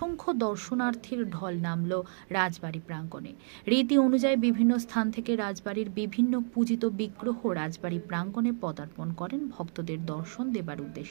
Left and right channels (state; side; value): silent; left; 58 dB below the other